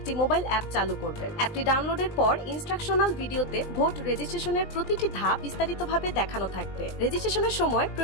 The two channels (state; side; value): late; right; 19 ms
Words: মোবাইল অ্যাপ চালু করবেন। অ্যাপটি ডাউনলোডের পর ইনস্ট্রাকশনাল ভিডিওতে ভোট রেজিস্ট্রেশনের প্রতিটি ধাপ বিস্তারিতভাবে দেখানো থাকবে। রেজিস্ট্রেশনের সময়